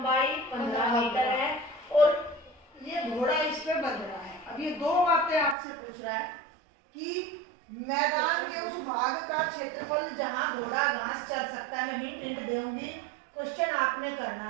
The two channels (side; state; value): left; drops out; at 5.6 s